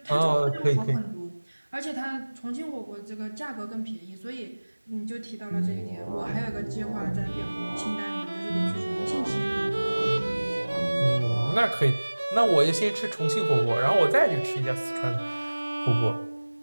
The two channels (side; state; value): both; inverted; correlation -1.00